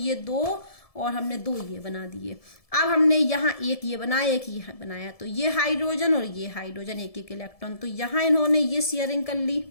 2 और हमने 2 ये बना दिए। अब हमने यहाँ एक ये बनाया, एक ये बनाया, तो ये हाइड्रोजन और ये हाइड्रोजन, एक एक इलेक्ट्रॉन। तो यहाँ इन्होंने ये शेयरिंग कर ली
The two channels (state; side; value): late; right; 1.7 ms